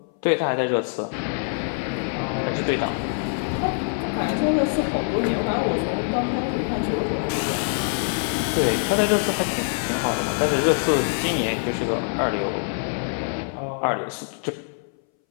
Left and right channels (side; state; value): right; silent; 61 dB below the other